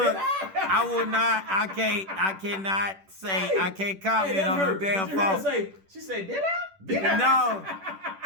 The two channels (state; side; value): late; left; 10 ms